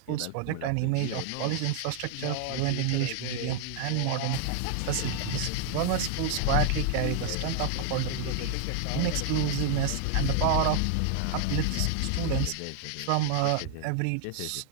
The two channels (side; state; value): both; different; correlation 0.00